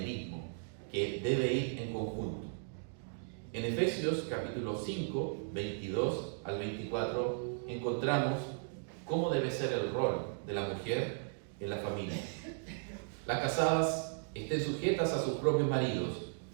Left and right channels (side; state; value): left; silent; digital silence